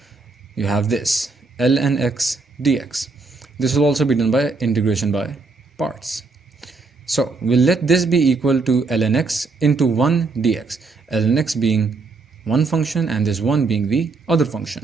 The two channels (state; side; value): quieter; left; 4.0 dB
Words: you have this ln x dx. This will also be done by integration by parts. So we'll let this be equal to ln x into 1 dx, ln x being one function and this one being the other